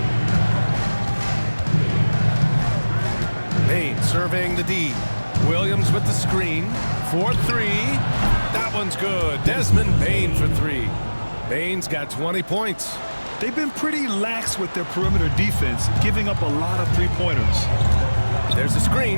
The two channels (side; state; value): both; inverted; correlation -1.00